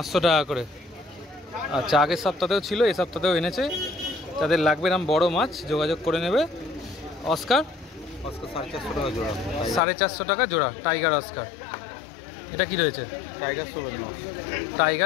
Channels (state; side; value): drops out; right; at 9.8 s